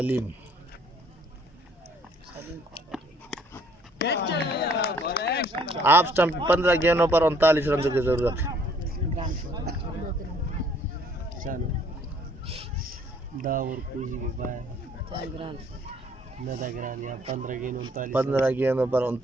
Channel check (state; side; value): normal; both; correlation 0.61